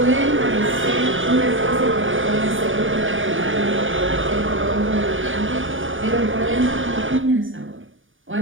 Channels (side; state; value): left; late; 0.57 ms